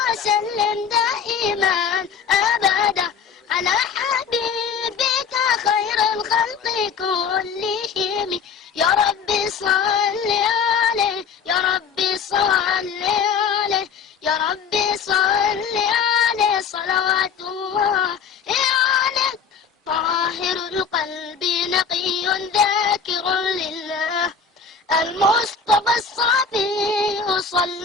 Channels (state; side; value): quieter; right; 6.2 dB